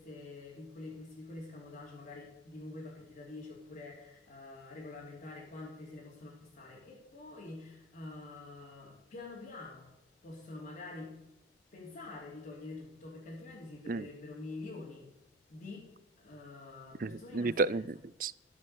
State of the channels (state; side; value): normal; both; correlation 0.31